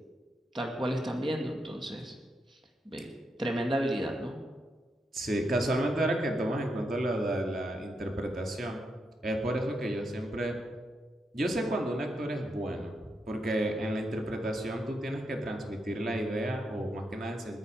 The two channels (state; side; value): normal; both; correlation 0.82